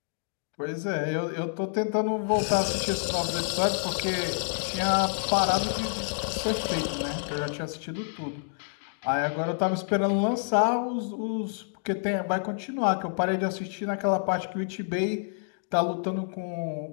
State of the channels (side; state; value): right; silent; digital silence